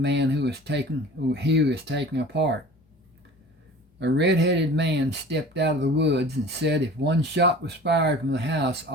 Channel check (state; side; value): normal; both; correlation 0.42